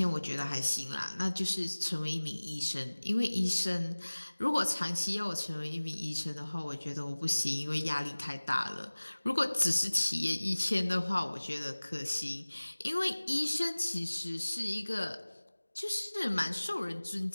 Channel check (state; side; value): inverted; both; correlation -1.00